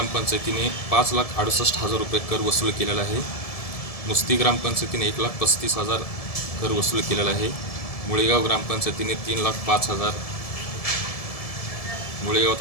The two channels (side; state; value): right; late; 1.7 ms